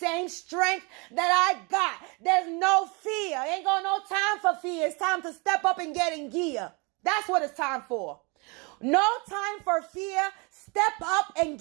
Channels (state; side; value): quieter; left; 30.2 dB